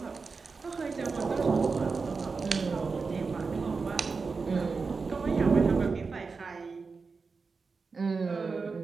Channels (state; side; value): quieter; left; 4.6 dB